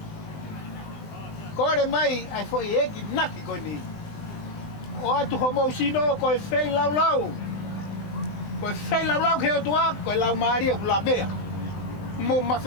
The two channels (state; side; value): late; right; 20 ms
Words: Kore mai ai foi eki naki koe ni. O atu ho mau sino koe fei lau. Koe fei lau ke o tua koe lau maria ku la bea. Mo ma